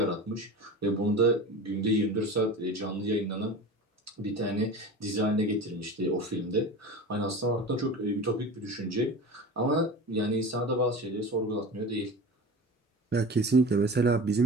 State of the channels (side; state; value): both; normal; correlation 0.32